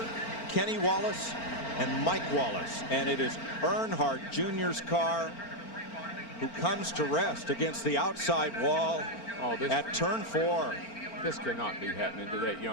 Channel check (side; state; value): right; late; 4.4 ms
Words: Kenny Wallace, and Mike Wallace. And it is Earnhardt Jr.'s car who comes to rest against the outside wall at turn 4. This cannot be happening to that